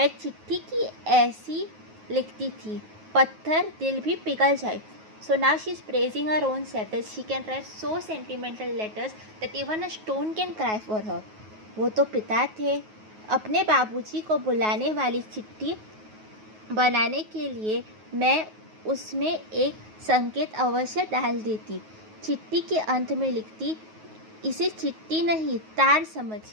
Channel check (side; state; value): left; late; 9.4 ms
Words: चिट्ठी की ऐसी लिखती थी, पत्थर दिल भी पिघल जाए. So now she is praising her own self that she can write so sentimental letters that even a stone can cry for her. वो तो पिता थे. अपने बाबूजी को बुलाने वाली चिट्ठी बनाने के लिए मैं उसमें एक संकेत अवश्य डाल देती. चिट्ठी के अंत में लिखती, इसे चिट्ठी नहीं तार